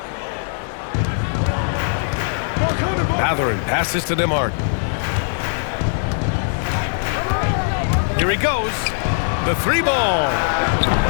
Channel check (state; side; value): silent; right; 66 dB below the other